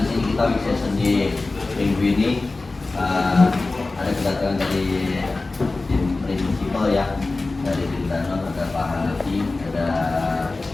sini kita big session di minggu ini ada kedatangan dari tim prinsipal ya, dari tim Danon, ada Pak Hanafi, ada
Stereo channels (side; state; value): right; quieter; 3.4 dB